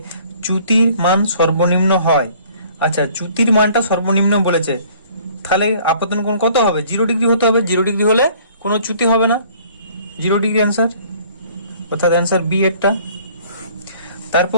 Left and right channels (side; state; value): both; inverted; correlation -0.55